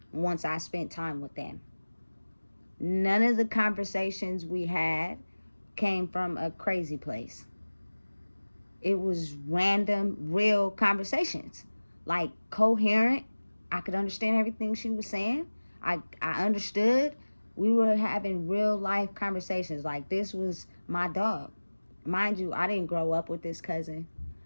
once I spent time with them. None of the conversations we had came from a crazy place. It was random, real conversations. Like, coherent. I could understand everything she was saying. I understood. We were having real life conversations. Like, this was my dog. Mind you, I didn't grow up with this cousin.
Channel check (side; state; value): both; inverted; correlation -1.00